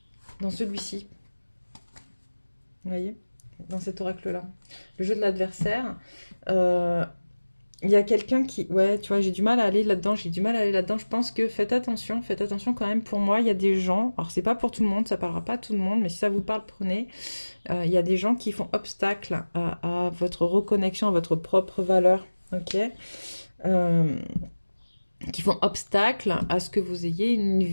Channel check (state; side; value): inverted; both; correlation -1.00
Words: dans celui-ci, vous voyez, dans cet oracle-là, le jeu de l'adversaire, il y a quelqu'un qui... Ouais, tu vois, j'ai du mal à aller là-dedans, j'ai du mal à aller là-dedans. Je pense que faites attention quand même. Pour moi, il y a des gens, alors c'est pas pour tout le monde, ça parlera pas à tout le monde, mais si ça vous parle, prenez. Il y a des gens qui font obstacle à votre reconnexion, à votre propre valeur, ok? Qui font obstacle à ce que vous ayez une